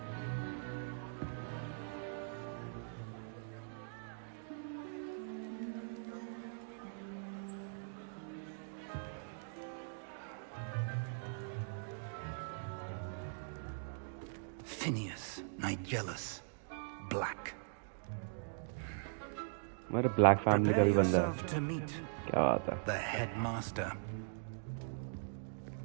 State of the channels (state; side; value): silent; left; digital silence